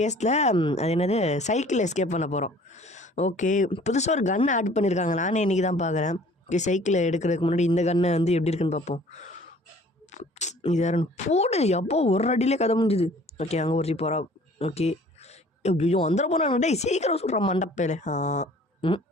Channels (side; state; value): both; normal; correlation 0.52